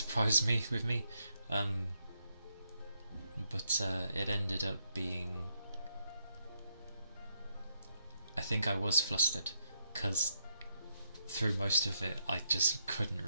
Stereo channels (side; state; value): both; inverted; correlation -0.79